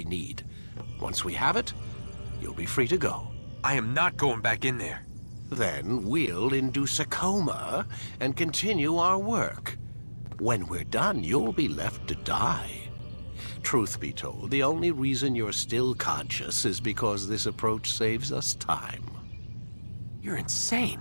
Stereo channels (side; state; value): both; inverted; correlation -1.00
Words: need. Once we have it, you'll be free to go. I am not going back in there. Then we'll induce a coma and continue our work. When we're done, you'll be left to die. Truth be told, the only reason you're still conscious is because this approach saves us time. You're insane.